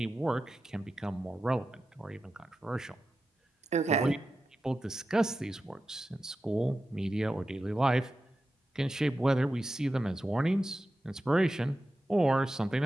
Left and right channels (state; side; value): normal; both; correlation 0.92